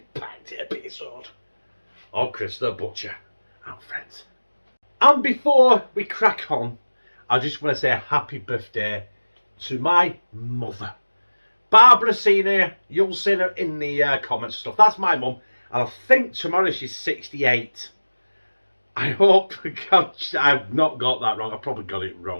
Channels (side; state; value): both; inverted; correlation -1.00